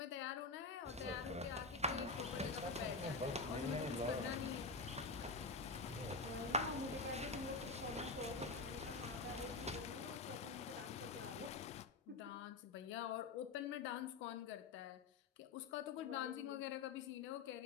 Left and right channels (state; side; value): quieter; right; 4.0 dB